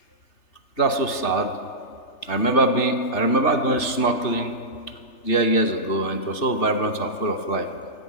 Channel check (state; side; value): late; right; 3.3 ms